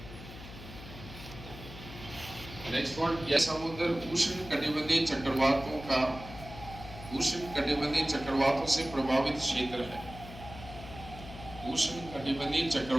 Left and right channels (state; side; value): noise; left; hum, 14 dB below the sound